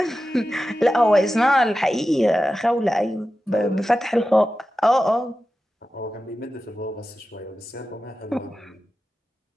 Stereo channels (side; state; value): both; normal; correlation 0.93